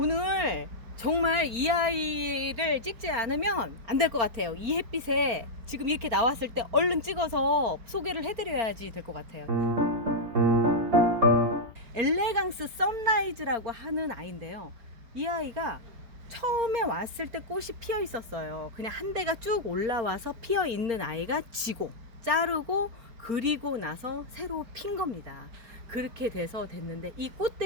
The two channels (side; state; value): left; late; 4.3 ms